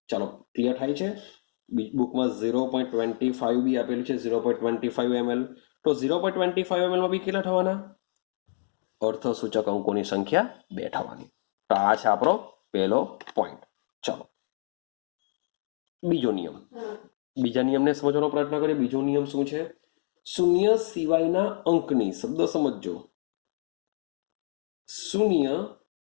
ચાલો ક્લિયર થાય છે? બુકમાં 0.25 બી આપેલું છે, 0.25 ml. તો 0.25 ml માં બી કેટલા થવાના? અર્થ સૂચક અંકોની સંખ્યા 2 થવાની. તો આ છે આપણો પહેલો પોઈન્ટ. ચાલો બીજો નિયમ, બીજા નિયમને સમજવાનો પ્રયત્ન કરીએ. બીજો નિયમ શું છે? શૂન્ય સિવાયના અંકની, શબ્દ સમજજો, શૂન્ય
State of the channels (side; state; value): right; silent; digital silence